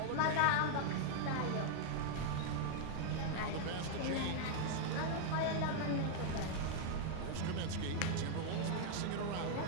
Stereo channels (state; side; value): different; both; correlation -0.01